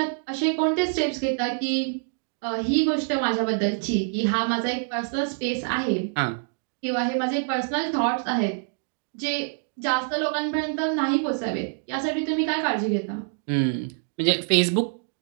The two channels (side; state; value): left; silent; 61 dB below the other